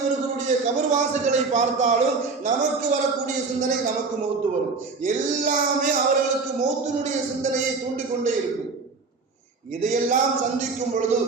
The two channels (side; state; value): left; quieter; 4.3 dB